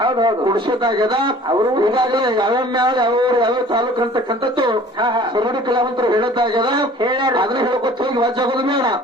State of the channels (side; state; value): both; normal; correlation 0.49